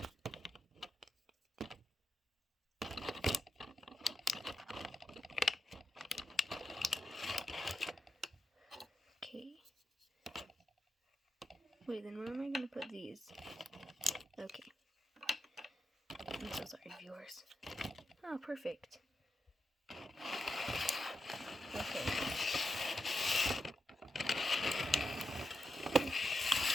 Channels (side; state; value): both; normal; correlation 0.87